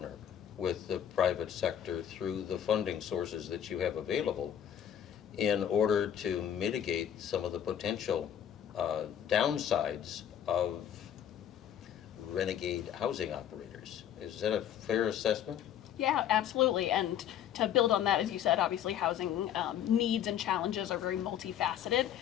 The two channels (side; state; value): right; quieter; 9.9 dB